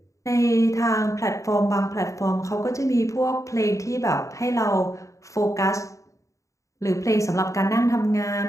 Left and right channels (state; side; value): late; right; 0.15 ms